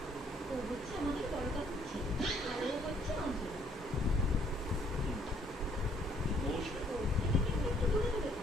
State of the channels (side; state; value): both; normal; correlation 0.64